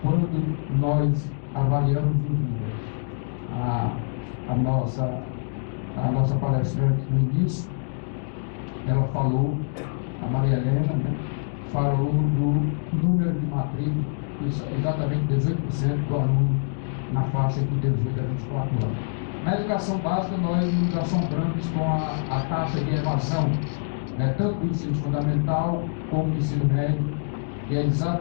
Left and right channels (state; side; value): silent; right; digital silence